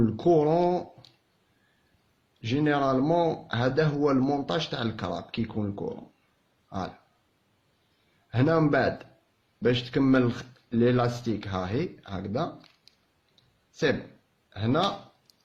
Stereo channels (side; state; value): both; identical; correlation 1.00